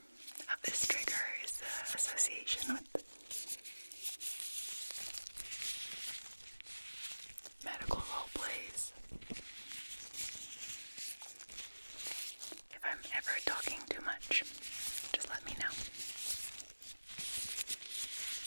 of this trigger is the association with medical role plays. If I'm ever talking too much, just let me know.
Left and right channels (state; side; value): inverted; both; correlation -1.00